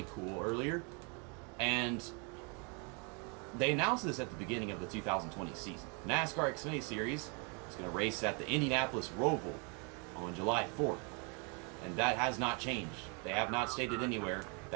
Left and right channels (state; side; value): quieter; left; 34.6 dB